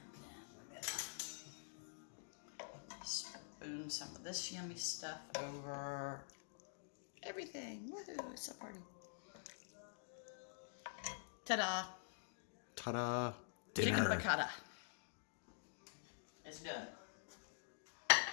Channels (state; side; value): silent; right; digital silence